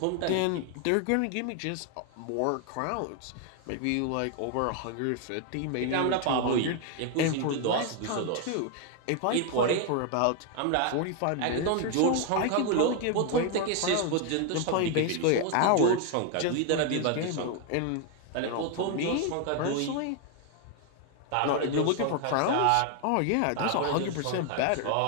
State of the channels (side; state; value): both; different; correlation 0.00